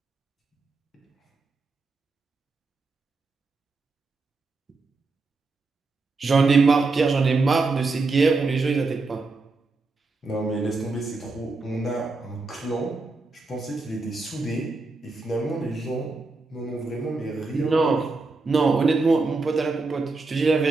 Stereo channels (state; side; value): quieter; left; 3.7 dB